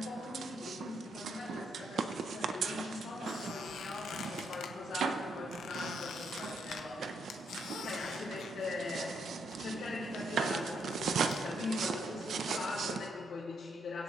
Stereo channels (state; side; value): normal; both; correlation 0.76